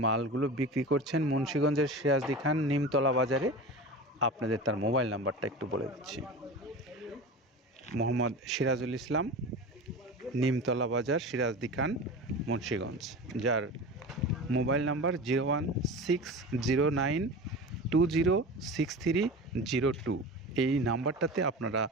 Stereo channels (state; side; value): normal; both; correlation 0.32